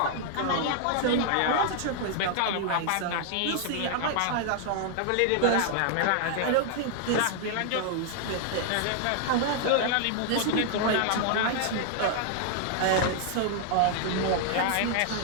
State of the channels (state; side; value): different; both; correlation 0.00